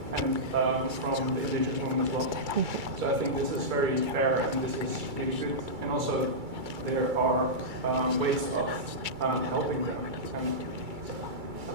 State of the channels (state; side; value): late; left; 2.3 ms